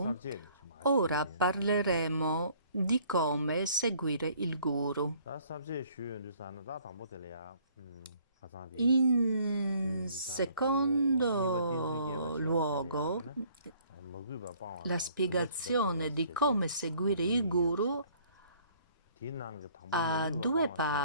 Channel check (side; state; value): both; inverted; correlation -0.59